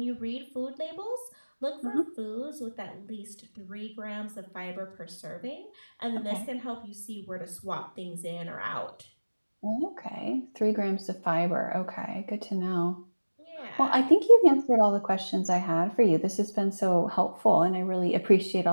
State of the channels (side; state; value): both; inverted; correlation -1.00